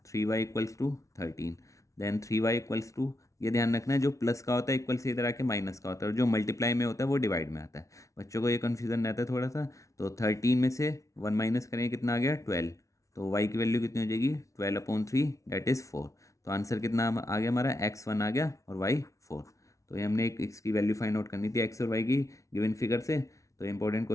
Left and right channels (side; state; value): right; late; 0.15 ms